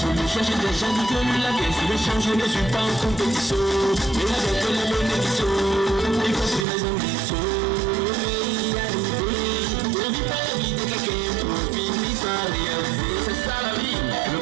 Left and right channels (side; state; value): left; drops out; at 6.7 s